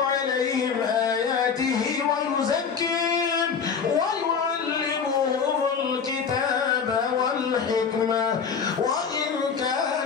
عليهم آياته ويزكيهم ويعلمهم الكتاب والحكمة وإن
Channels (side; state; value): right; quieter; 6.2 dB